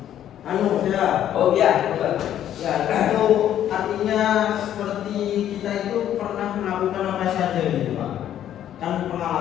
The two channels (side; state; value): right; quieter; 11.0 dB